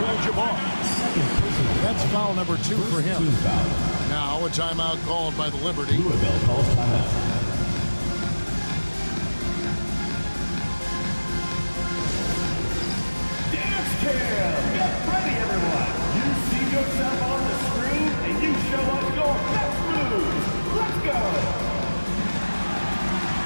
That's foul number 2 for him. Now a timeout called by the Liberty. Louisville calls timeout. Dance cam! Get ready, everyone! You see yourself on the screen, and you show us your best moves. Let's go!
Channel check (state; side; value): inverted; both; correlation -1.00